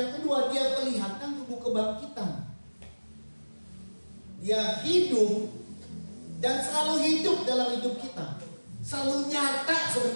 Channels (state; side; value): inverted; both; correlation -1.00